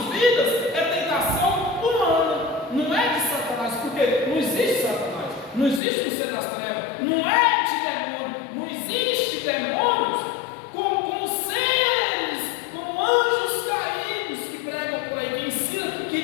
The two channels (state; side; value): drops out; right; at 5.8 s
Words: vidas, é tentação humana, não é de Satanás, porque não existe Satanás, não existe o ser das trevas, não é de demônio, não existe demônios como seres, como anjos caídos que pregam por aí, que ensinam que